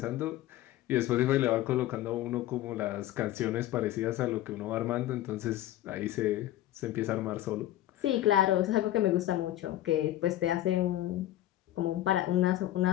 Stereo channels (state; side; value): quieter; right; 14.0 dB